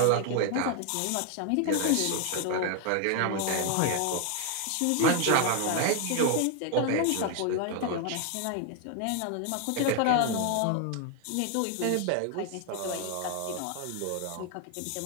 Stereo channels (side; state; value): both; different; correlation 0.00